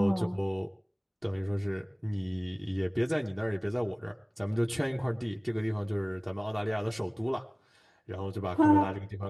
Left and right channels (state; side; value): identical; both; correlation 1.00